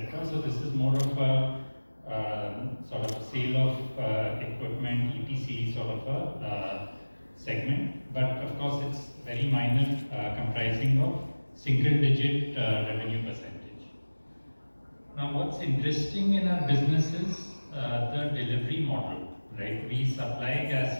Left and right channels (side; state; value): both; inverted; correlation -1.00